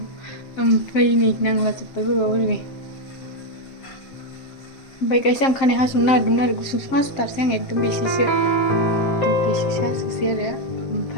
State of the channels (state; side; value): late; right; 7.4 ms